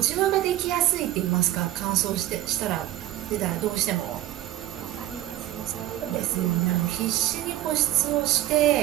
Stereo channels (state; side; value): quieter; left; 14.3 dB